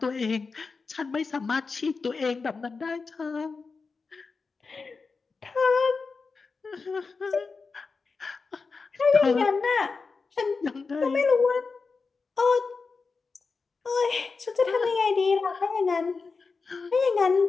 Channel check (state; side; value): quieter; right; 4.5 dB